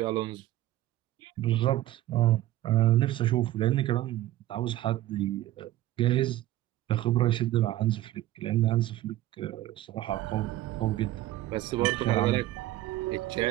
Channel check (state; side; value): quieter; left; 14.9 dB